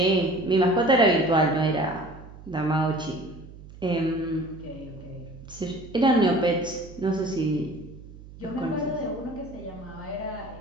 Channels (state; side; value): noise; right; hum, 17 dB below the sound